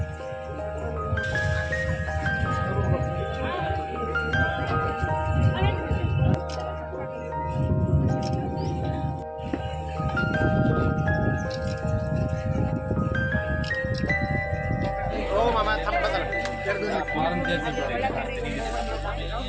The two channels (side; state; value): both; identical; correlation 1.00